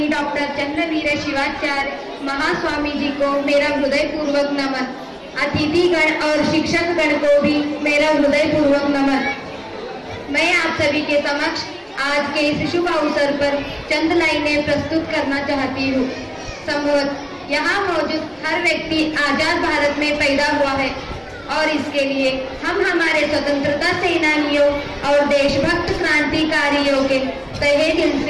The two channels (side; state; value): both; identical; correlation 1.00